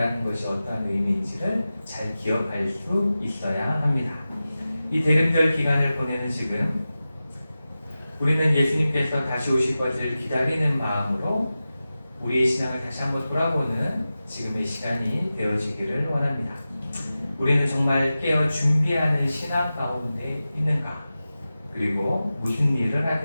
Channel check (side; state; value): both; inverted; correlation -0.94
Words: 것이 어떠한 의미인지를 잘 기억할 수 있어야 합니다. 이 대림절 기간을 보내는 지금 우리는 예수님께서 다시 오실 것을 기다리는 마음으로 우리의 신앙을 다시 한번 돌아보는 지금의 시간이 되어지기를 원합니다. 우리는 정말 깨어 준비하는 신앙 가운데 있는가? 그리고 무슨 일을